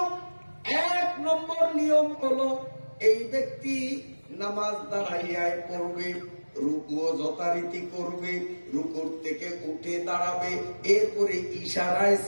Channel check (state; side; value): inverted; both; correlation -1.00